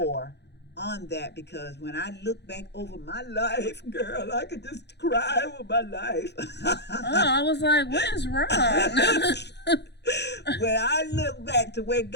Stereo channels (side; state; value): right; late; 0.50 ms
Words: on that, because when I look back over my life, girl, I could just cry over my life. I was like, what is wrong? When I look back to where